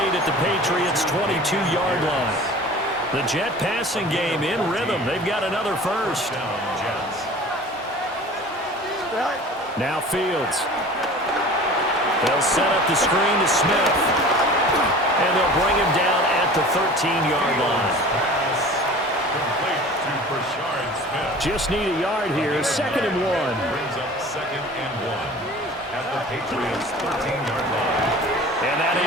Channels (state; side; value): normal; both; correlation 0.42